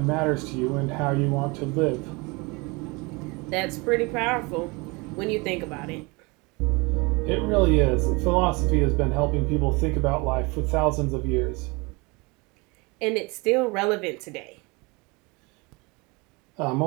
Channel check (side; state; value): left; quieter; 27.0 dB